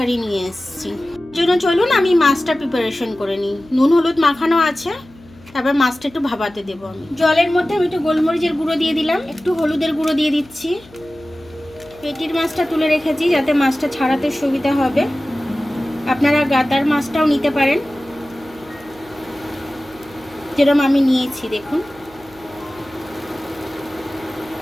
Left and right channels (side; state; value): left; noise; hum, 24 dB below the sound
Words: নিয়ে এসেছি। জন্য চলুন আমি মাছটা প্রিপারেশন করে নিই। নুন হলুদ মাখানো আছে, তারপর মাছটা একটু ভাপাতে দেবো আমি। জলের মধ্যে আমি একটু গোলমরিচের গুঁড়ো দিয়ে দিলাম, একটু হলুদের গুঁড়ো দিয়ে দিচ্ছি। পেটির মাছটা তুলে রেখেছি যাতে মাছটা ছাড়াতে সুবিধা হবে। আপনারা গাদার মাছটাও নিতে পারেন, যেরকম আমি নিয়েছি দেখুন।